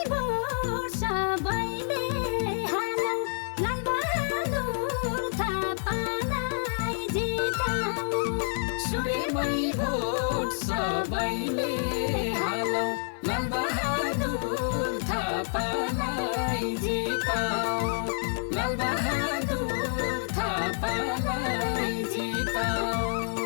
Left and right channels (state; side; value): silent; right; 59 dB below the other